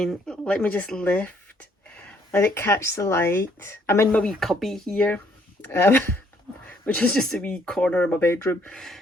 let me just lift, let it catch the light. I'm in my wee cubby here, which is just a wee corner of my bedroom.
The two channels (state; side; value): normal; both; correlation 0.67